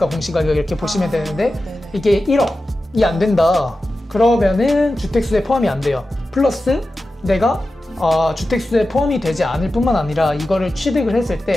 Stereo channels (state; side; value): normal; both; correlation 0.93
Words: 공시가격 이렇게 보시면 되는데 네네. 이게 1억이 안 된다. 그러면은 주택수에 포함이 안 돼요. 플러스 내가 주택수에 포함이 되지 않을 뿐만 아니라 이거를 취득을 했을